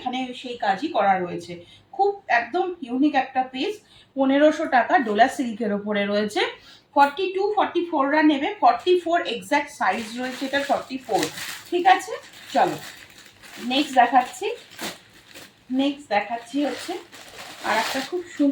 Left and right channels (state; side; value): identical; both; correlation 1.00